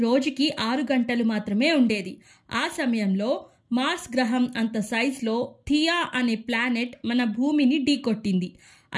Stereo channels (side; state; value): both; identical; correlation 1.00